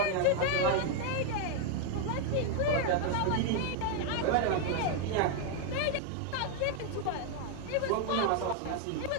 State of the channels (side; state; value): both; different; correlation 0.01